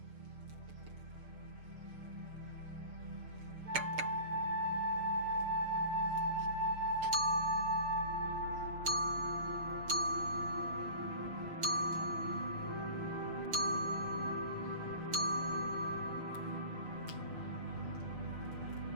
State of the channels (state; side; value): late; left; 6.5 ms